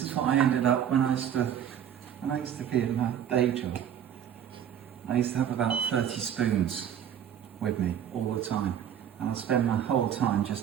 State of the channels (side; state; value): left; quieter; 9.5 dB